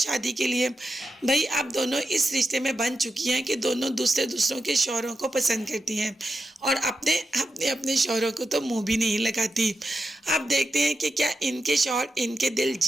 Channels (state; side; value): normal; both; correlation 0.88